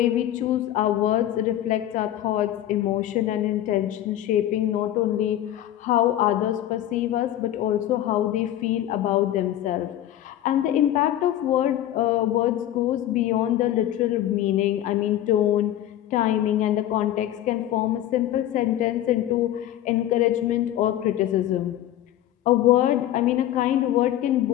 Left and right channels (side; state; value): right; quieter; 12.7 dB